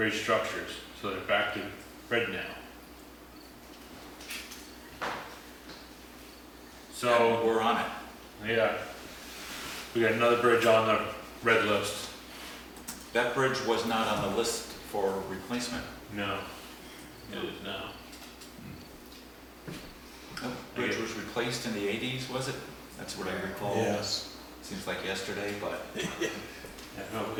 structures, so they're back to red now. So, We're on it. yeah, we got another bridge on the red list. That bridge was not on the list for replacement. No, it is now. That bridge was replaced in the 80s, was it? That's what I recall. Yes. Seems like yesterday, but I have no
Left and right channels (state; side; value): identical; both; correlation 1.00